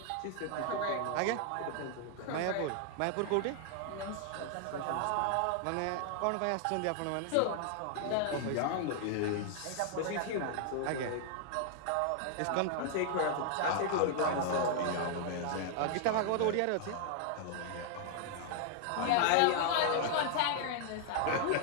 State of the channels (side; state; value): both; different; correlation 0.00